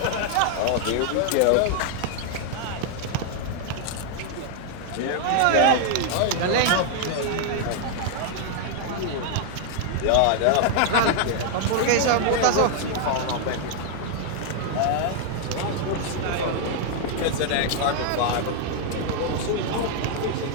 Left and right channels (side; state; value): both; different; correlation 0.00